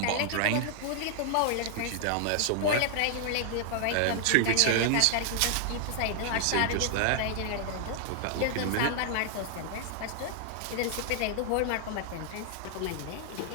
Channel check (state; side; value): different; both; correlation 0.00